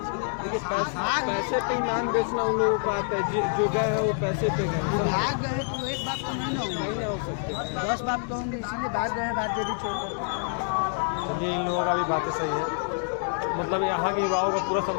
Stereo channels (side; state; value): right; silent; 60 dB below the other